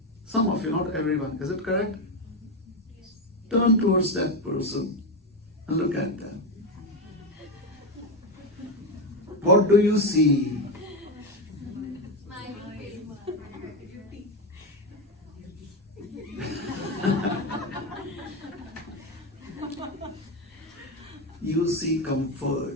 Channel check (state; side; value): normal; both; correlation 0.12